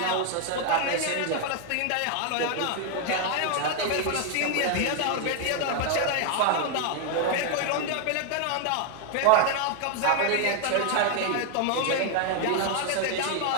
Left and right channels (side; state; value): both; different; correlation 0.00